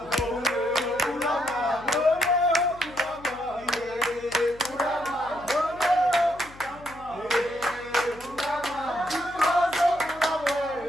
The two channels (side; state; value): left; noise; hum, 21 dB below the sound